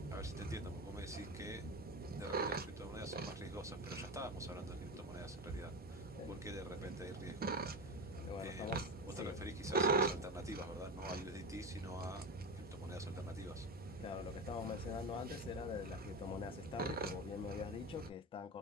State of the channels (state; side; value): normal; both; correlation 0.23